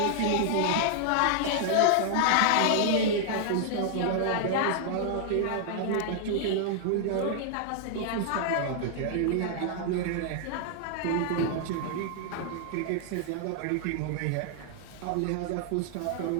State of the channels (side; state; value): both; different; correlation -0.01